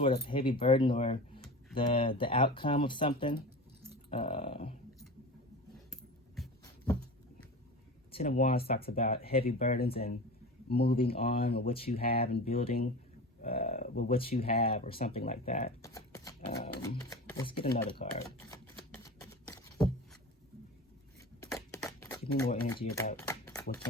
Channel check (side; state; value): both; normal; correlation 0.32